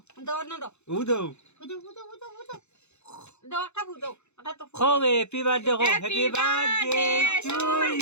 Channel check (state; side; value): late; right; 0.82 ms